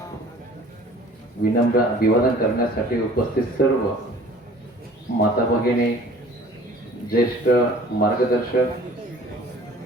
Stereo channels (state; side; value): normal; both; correlation 0.49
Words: विनम्र अभिवादन करण्यासाठी उपस्थित सर्व माता भगिनी, ज्येष्ठ मार्गदर्शक,